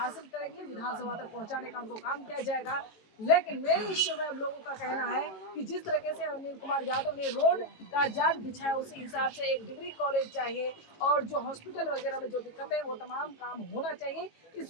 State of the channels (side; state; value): right; late; 18 ms